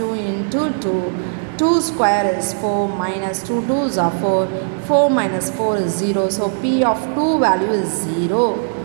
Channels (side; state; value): left; silent; digital silence